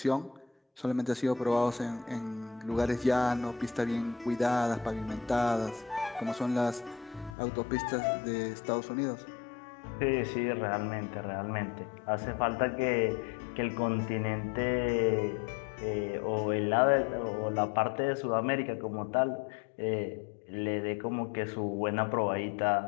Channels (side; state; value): right; drops out; at 7.4 s